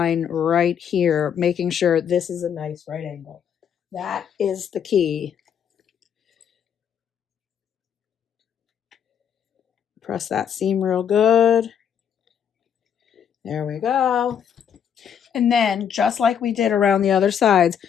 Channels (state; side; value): quieter; right; 8.2 dB